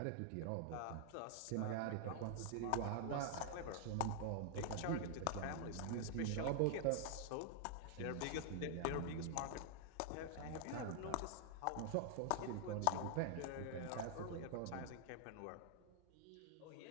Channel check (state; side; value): different; both; correlation 0.00